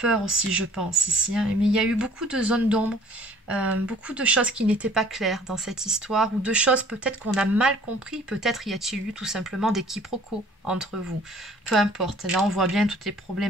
aussi, je pense, ici. Mais il y a eu beaucoup de zones d'ombre, beaucoup de choses qui n'étaient pas claires dans cette histoire, ou de choses peut-être qu'on a mal compris. Peut-être y a-t-il eu tout simplement des quiproquos entre vous. Peu importe. Là, on voit bien toutes les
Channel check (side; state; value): both; normal; correlation 0.54